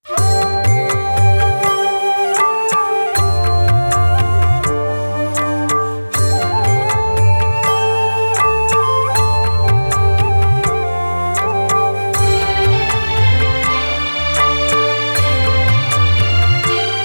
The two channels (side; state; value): both; inverted; correlation -1.00